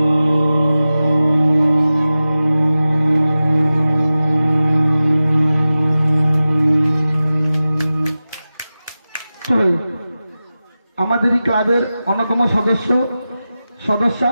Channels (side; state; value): both; inverted; correlation -0.95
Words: আমাদেরই ক্লাবের অন্যতম সদস্যা